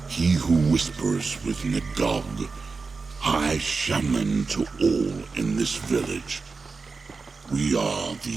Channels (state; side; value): quieter; left; 4.4 dB